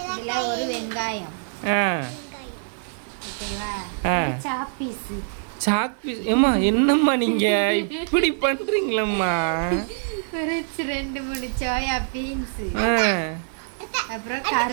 ஒரு வெங்காயம், சாக் பீஸ். ஏம்மா என்னம்மா நீங்க இப்படி பண்றீங்களம்மா? ரெண்டு மூணு சோயா பீன்ஸ், அப்புறம்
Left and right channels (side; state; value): left; silent; 62 dB below the other